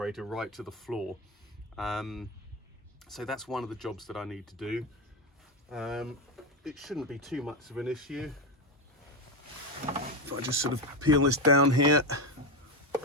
right to the floor. So that's one of the jobs that I need to do. It shouldn't be too much of an issue. If I just sort of peel this down here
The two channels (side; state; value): both; normal; correlation 0.13